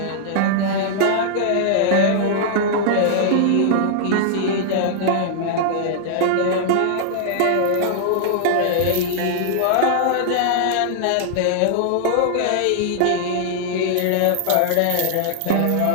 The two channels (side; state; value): both; different; correlation -0.01